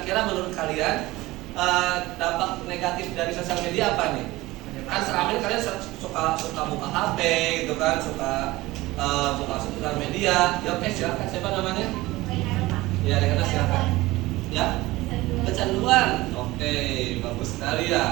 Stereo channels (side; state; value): left; quieter; 19.1 dB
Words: menurut kalian dampak negatif dari sosial media apa nih? Kan selama ini kalian suka buka HP gitu kan, suka buka sosial media. Ya oke, silakan. Siapa namanya? Ya, Rekana silakan. Ya, kecanduan. Oke, bagus sekali